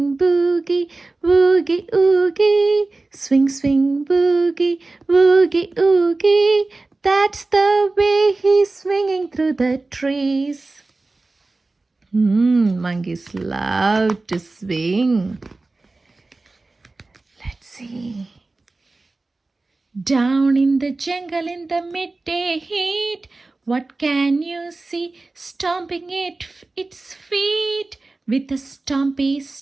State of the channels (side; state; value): left; quieter; 3.3 dB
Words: boogie, boogie, oogie. Swing, swing, boogie, boogie, oogie. That's the way he's swinging through the trees. Monkeys love to swing. Let's see. Down in the jungle in the midday heat, what can you see stomping its feet? With a stompy